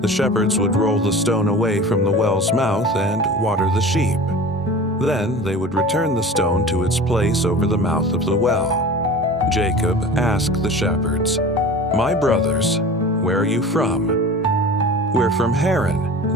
shepherds would roll the stone away from the well's mouth and water the sheep. Then they would return the stone to its place over the mouth of the well. Jacob asked the shepherds, "My brothers, where are you from?" "We're from Haran,"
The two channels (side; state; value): both; normal; correlation 0.37